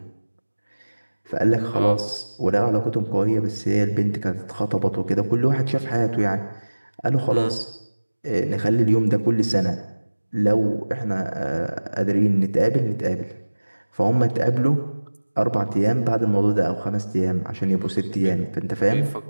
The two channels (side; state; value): both; inverted; correlation -1.00